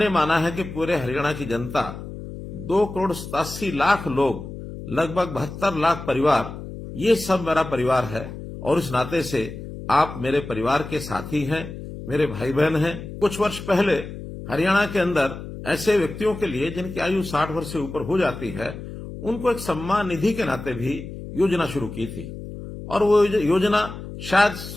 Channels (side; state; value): left; noise; hum, 11 dB below the sound